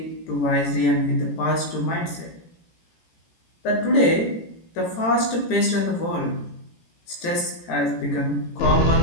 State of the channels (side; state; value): right; late; 18 ms